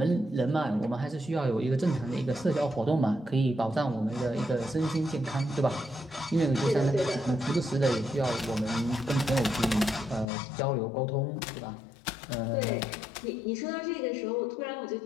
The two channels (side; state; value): right; drops out; at 10.2 s